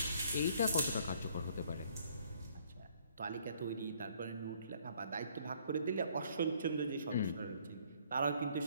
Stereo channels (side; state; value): both; inverted; correlation -0.62